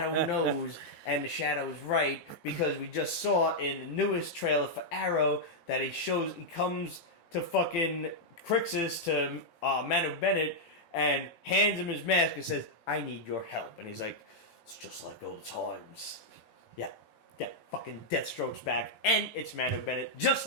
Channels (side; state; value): right; late; 18 ms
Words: knows, and the Shadow is right, because we just saw in the newest trailer for Arrow that he comes to fucking Crixus, to Manu Bennett, and hands him his mask and says, I need your help. And he's like, it's just like old times. Yeah, fucking Deathstroke's back, and it's Manu Bennett, just